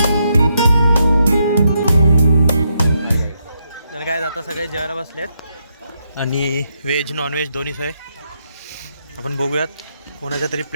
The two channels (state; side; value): inverted; both; correlation -0.80